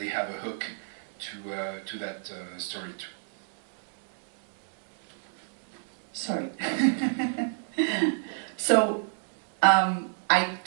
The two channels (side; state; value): left; silent; digital silence